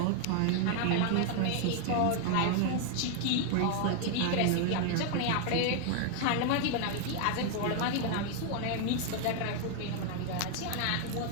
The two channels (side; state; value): both; different; correlation 0.00